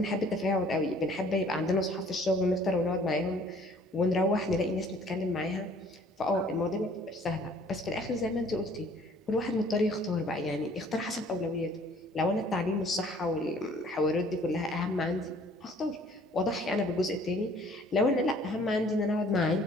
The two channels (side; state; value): both; normal; correlation 0.56